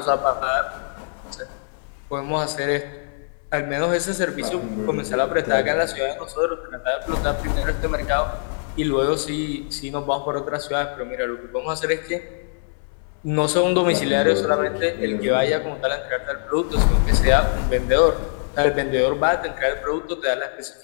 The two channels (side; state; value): right; silent; 64 dB below the other